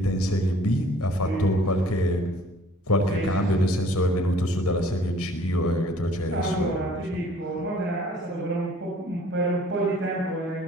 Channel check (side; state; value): both; normal; correlation 0.55